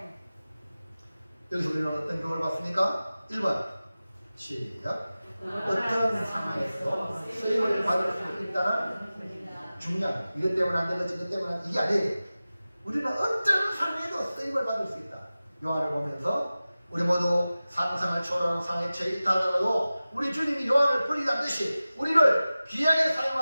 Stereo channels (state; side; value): inverted; both; correlation -0.96